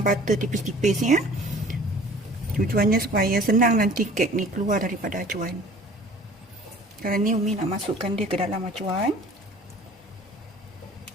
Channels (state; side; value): normal; both; correlation 0.48